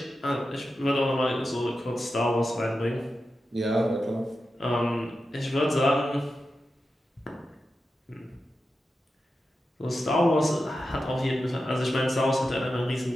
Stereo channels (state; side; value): normal; both; correlation 0.90